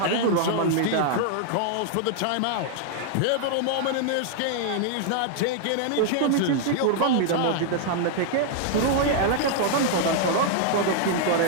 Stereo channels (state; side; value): different; both; correlation 0.00